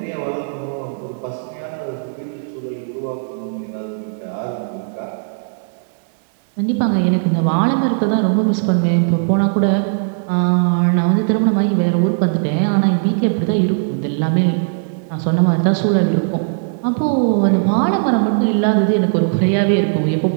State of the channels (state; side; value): silent; left; digital silence